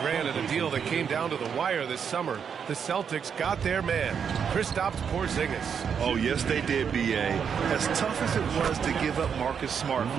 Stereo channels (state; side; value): quieter; left; 7.2 dB